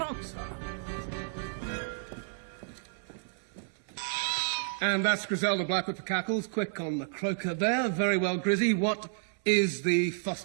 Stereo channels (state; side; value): silent; left; 57 dB below the other